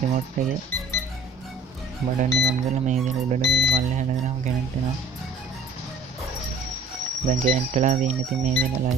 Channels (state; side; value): quieter; left; 3.3 dB